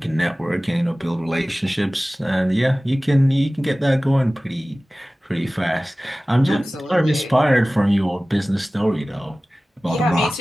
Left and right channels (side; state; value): both; normal; correlation 0.97